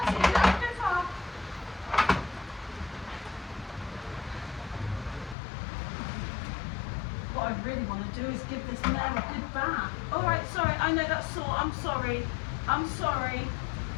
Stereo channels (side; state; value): right; drops out; at 5.4 s